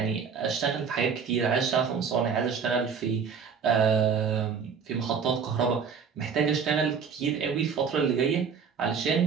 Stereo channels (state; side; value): quieter; left; 6.3 dB